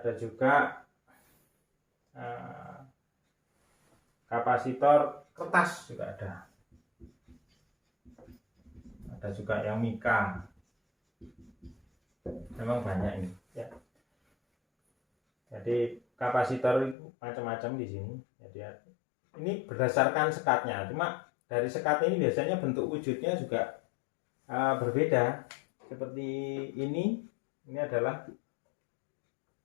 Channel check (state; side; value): drops out; right; at 16.9 s